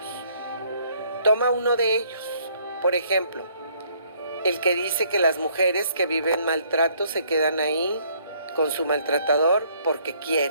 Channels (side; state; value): both; inverted; correlation -0.64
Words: Toma uno de ellos, por ejemplo, el que dice que las mujeres que viven maltrato se quedan ahí con su maltratador porque